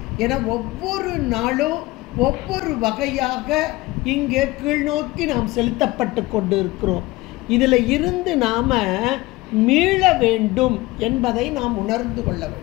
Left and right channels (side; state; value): right; quieter; 20.2 dB